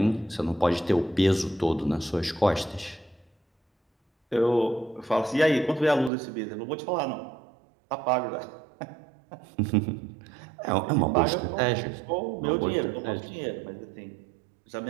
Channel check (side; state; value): left; drops out; at 6.1 s